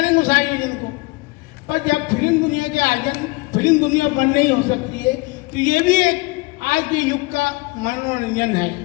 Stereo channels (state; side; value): quieter; right; 24.2 dB